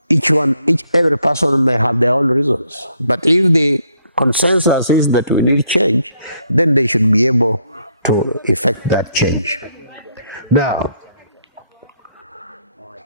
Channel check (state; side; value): inverted; both; correlation -0.71